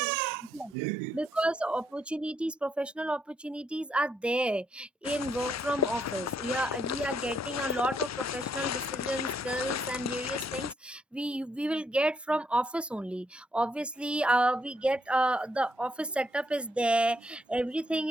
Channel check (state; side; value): normal; both; correlation 0.74